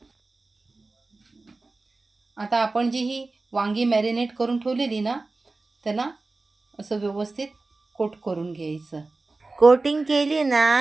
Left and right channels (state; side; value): quieter; left; 3.4 dB